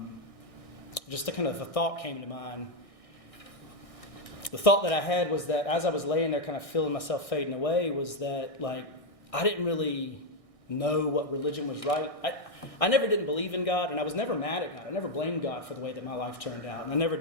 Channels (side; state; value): right; late; 1.6 ms